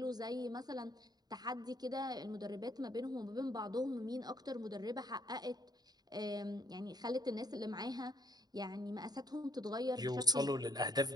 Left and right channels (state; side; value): late; left; 0.19 ms